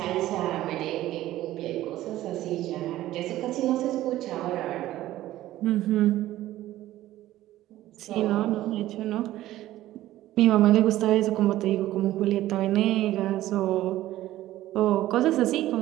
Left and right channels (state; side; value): quieter; left; 14.8 dB